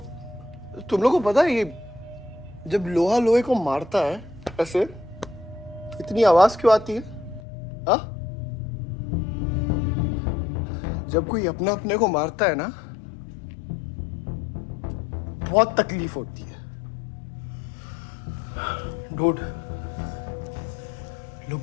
तुम लोगों को पता है ये जब लोहा लोहे को मारता है ऐसे इतनी आवाज क्यों आती है? हाँ? जब कोई अपना अपने को मारता है ना, बहुत तकलीफ होती है। Dude, look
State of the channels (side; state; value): right; drops out; at 7.4 s